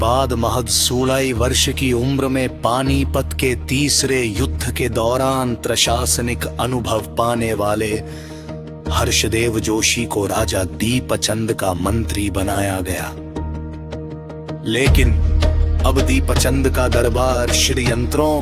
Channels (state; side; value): identical; both; correlation 1.00